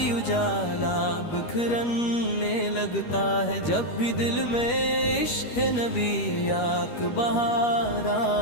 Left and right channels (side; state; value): right; late; 13 ms